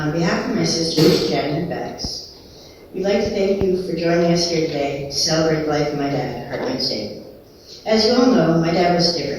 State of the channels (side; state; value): both; identical; correlation 1.00